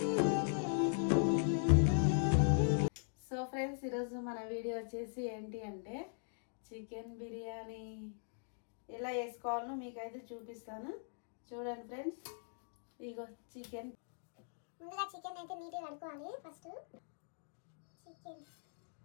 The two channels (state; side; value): silent; right; digital silence